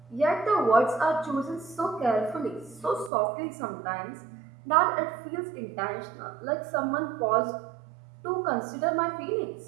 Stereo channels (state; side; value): drops out; left; at 3.1 s